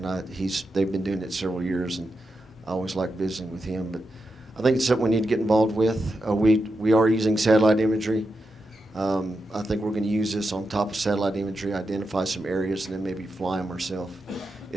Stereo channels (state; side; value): normal; both; correlation 0.87